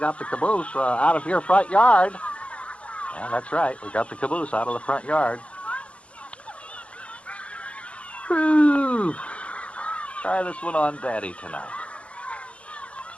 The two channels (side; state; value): right; late; 0.061 ms